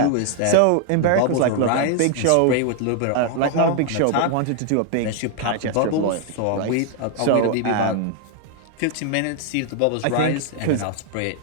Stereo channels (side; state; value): both; different; correlation 0.00